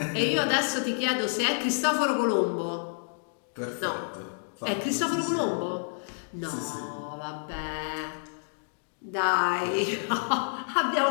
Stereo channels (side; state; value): right; silent; digital silence